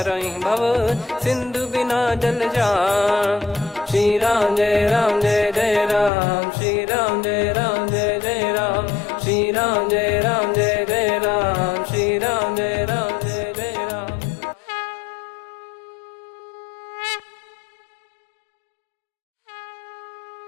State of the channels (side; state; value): right; drops out; at 6.1 s